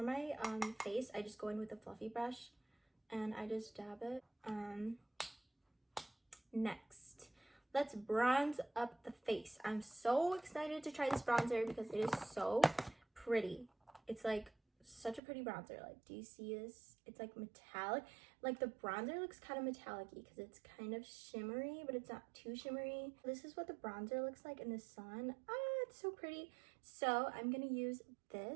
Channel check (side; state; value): left; drops out; at 15.2 s